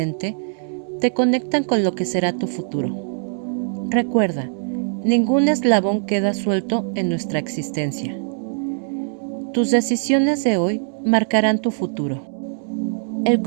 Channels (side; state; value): left; silent; digital silence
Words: te conectan con lo que será tu futuro. Recuerda, ningún eslabón queda suelto en nuestra existencia. Tus decisiones de hoy marcarán tu futuro. El